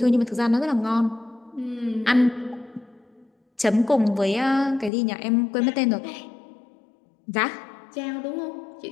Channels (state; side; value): drops out; right; at 4.9 s